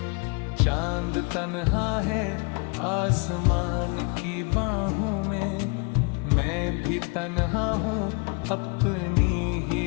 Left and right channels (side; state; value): right; quieter; 33.5 dB